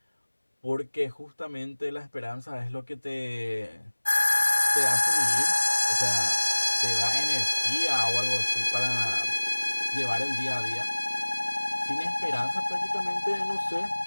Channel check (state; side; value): inverted; both; correlation -1.00